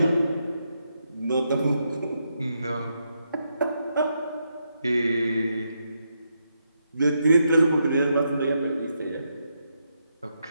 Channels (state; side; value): inverted; both; correlation -0.81